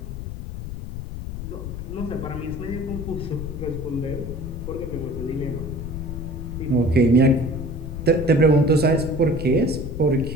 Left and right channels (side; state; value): left; noise; rumble, 7 dB below the sound